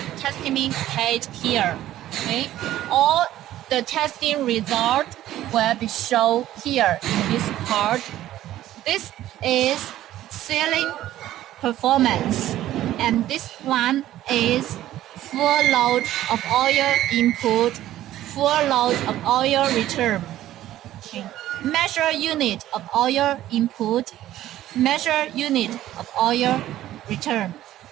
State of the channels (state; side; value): quieter; left; 13.7 dB